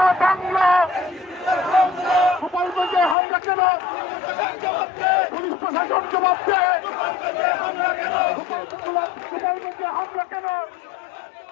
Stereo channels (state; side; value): drops out; right; at 3.2 s